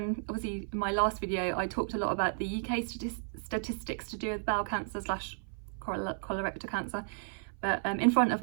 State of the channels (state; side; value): silent; left; 56 dB below the other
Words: in my last video I talked a lot about the UK statistics to do with bowel cancer / colorectal cancer, but in front of